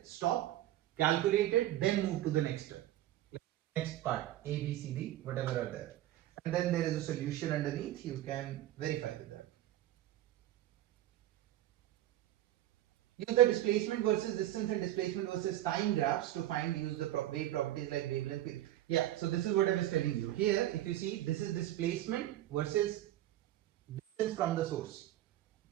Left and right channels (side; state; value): left; quieter; 13.8 dB